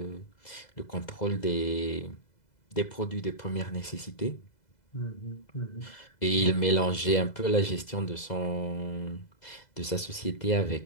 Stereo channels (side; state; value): right; late; 2.0 ms